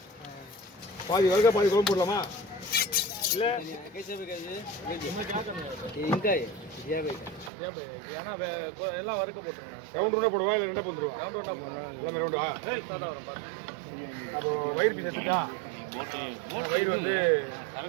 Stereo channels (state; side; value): drops out; left; at 7.5 s